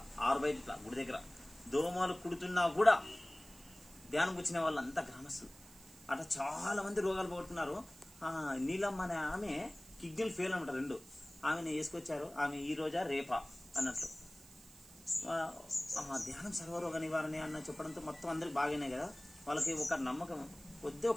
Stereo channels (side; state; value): right; noise; hiss, 21 dB below the sound